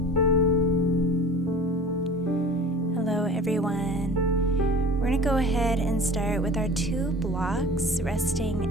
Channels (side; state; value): both; normal; correlation 0.41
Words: Hello everyone. We're going to go ahead and start with our two blocks